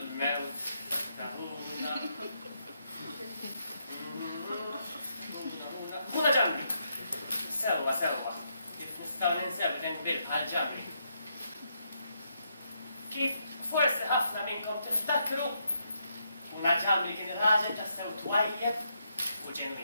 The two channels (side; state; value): both; inverted; correlation -0.78